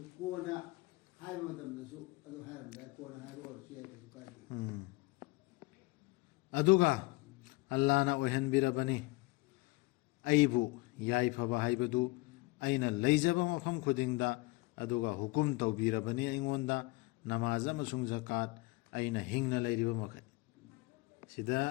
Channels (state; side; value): quieter; right; 23.4 dB